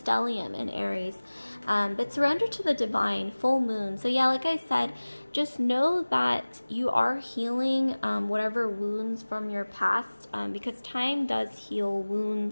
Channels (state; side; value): inverted; both; correlation -1.00